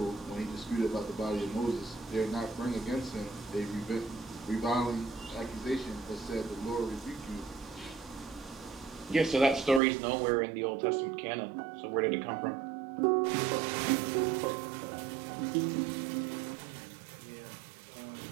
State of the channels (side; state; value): left; drops out; at 9.8 s